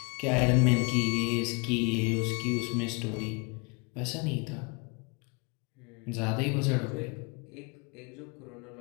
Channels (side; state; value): right; quieter; 31.5 dB